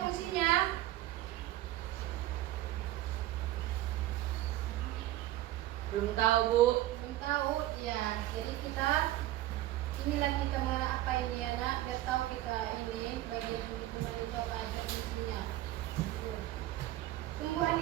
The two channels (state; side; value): quieter; left; 15.1 dB